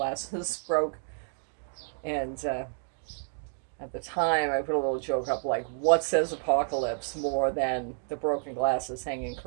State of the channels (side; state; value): left; silent; 58 dB below the other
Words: broke. And at the time, I put a little joke up like, what says apocalypse more than the broken glasses hanging